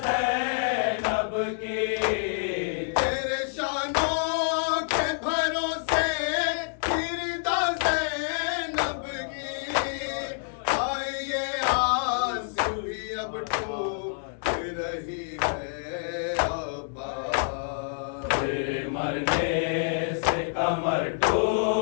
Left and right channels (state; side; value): silent; right; 60 dB below the other